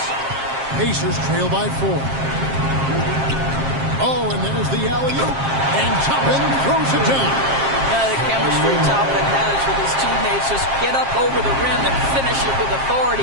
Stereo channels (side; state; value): left; late; 7.5 ms